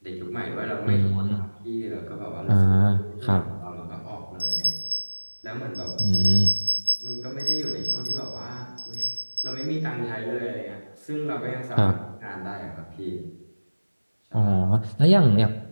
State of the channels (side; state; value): both; inverted; correlation -1.00